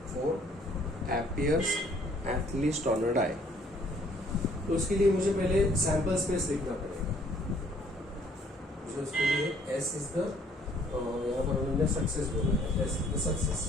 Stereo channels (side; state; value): both; normal; correlation 0.61